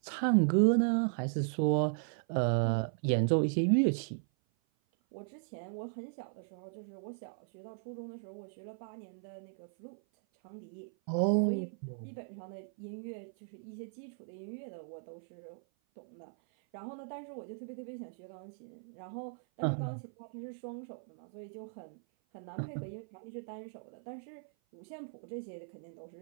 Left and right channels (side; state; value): left; silent; 53 dB below the other